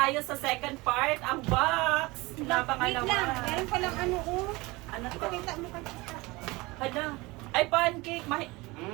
sa second part. Ang box na Wait pangalawa. lang, meron palang ano, oh. Ano to? Ipakita mo kay tita. Hala. Ay, pancake.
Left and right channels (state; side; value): quieter; left; 23.0 dB